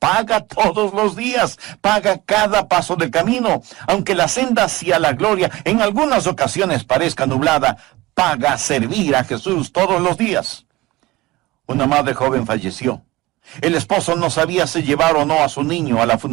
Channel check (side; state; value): left; quieter; 19.7 dB